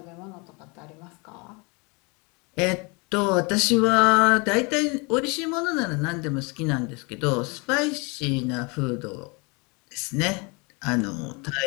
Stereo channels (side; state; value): right; quieter; 29.9 dB